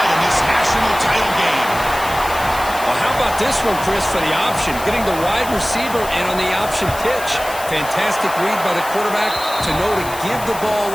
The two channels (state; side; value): noise; left; hiss, 13 dB below the sound